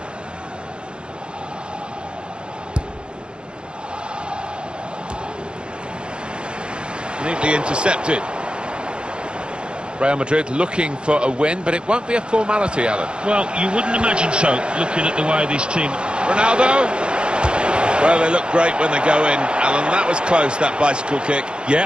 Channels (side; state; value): left; late; 0.053 ms